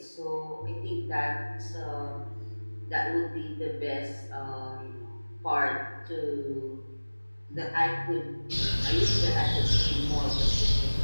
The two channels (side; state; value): both; inverted; correlation -1.00